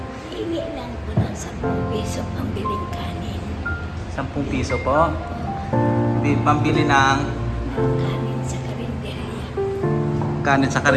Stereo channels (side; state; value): both; identical; correlation 1.00